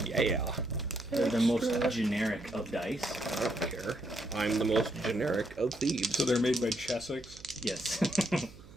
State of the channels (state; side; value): noise; right; hum, 20 dB below the sound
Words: Yeah. They're the most generic of dice. I don't care. I'm the most generic of thieves. So they're made by Chessex. Yes.